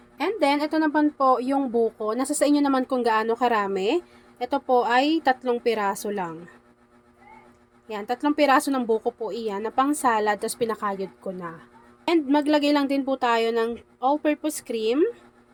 And then, ito naman po yung buko. Nasa sa inyo naman kung gaano karami. Ito po ay 3 piraso lang. Yan, 3 piraso ng buko po iyan na pang salad, tapos pinakayod ko na. And maglagay lang din po tayo ng all-purpose cream.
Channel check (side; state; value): both; identical; correlation 1.00